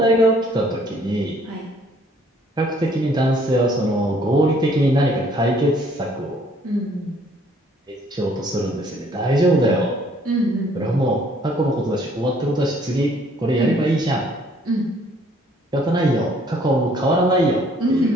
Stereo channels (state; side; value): normal; both; correlation 0.61